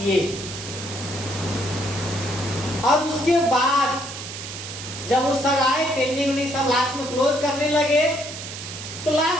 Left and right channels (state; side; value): noise; right; hiss, 9 dB below the sound